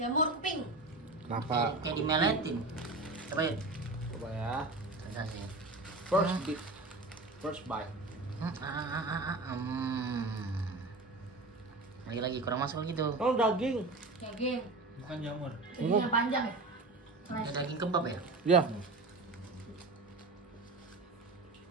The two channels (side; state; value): left; quieter; 3.2 dB